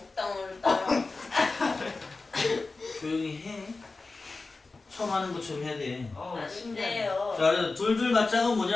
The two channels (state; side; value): quieter; right; 3.7 dB